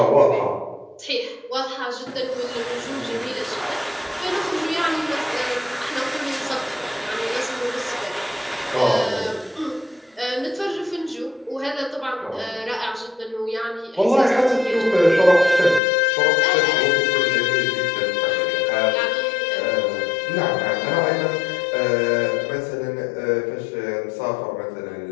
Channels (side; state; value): right; drops out; at 15.8 s